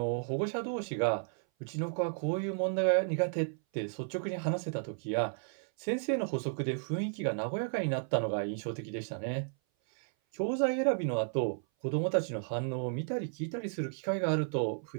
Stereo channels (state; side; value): silent; left; 56 dB below the other